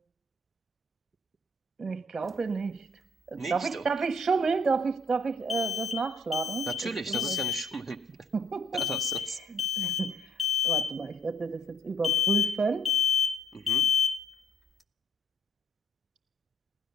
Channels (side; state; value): both; normal; correlation 0.65